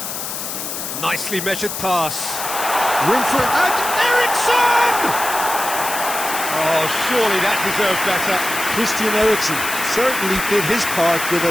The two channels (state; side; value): noise; left; hiss, 5 dB below the sound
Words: Nicely measured pass. Room for it. And Ericsson! Oh, surely that deserved better. Christian Eriksen certainly did his part with a